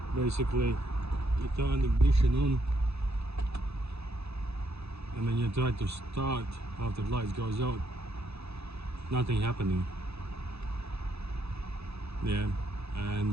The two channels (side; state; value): left; late; 0.79 ms